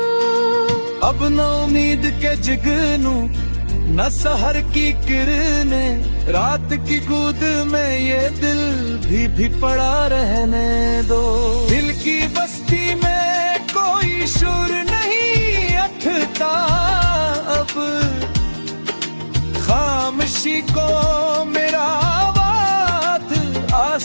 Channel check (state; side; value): inverted; both; correlation -1.00